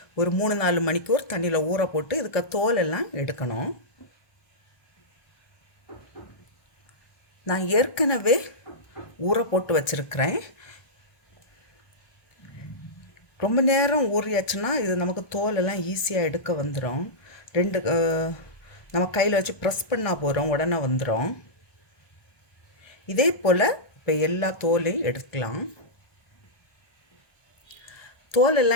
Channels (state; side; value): late; right; 1.2 ms